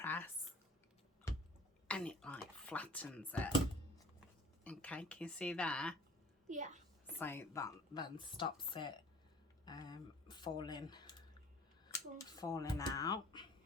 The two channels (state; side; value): normal; both; correlation 0.48